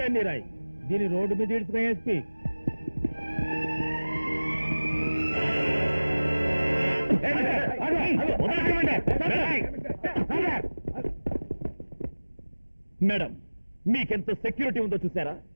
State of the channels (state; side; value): inverted; both; correlation -1.00